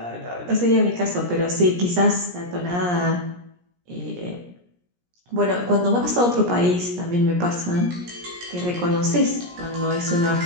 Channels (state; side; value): late; left; 17 ms